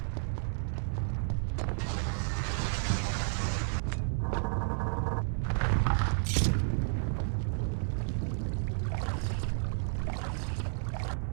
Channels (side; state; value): left; silent; digital silence